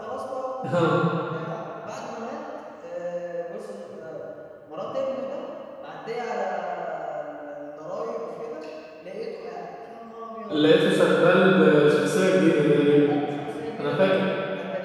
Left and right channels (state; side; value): identical; both; correlation 1.00